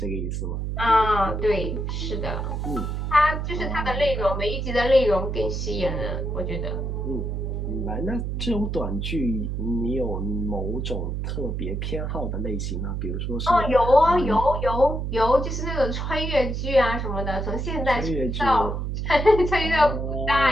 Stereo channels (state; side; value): noise; right; hum, 2 dB below the sound